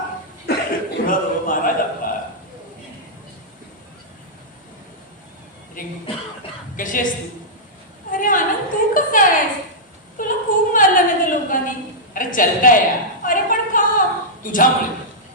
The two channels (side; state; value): both; normal; correlation -0.10